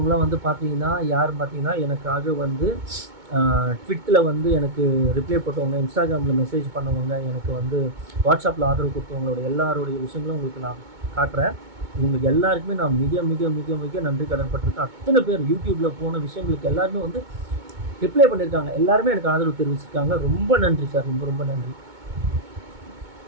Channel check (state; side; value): late; left; 2.2 ms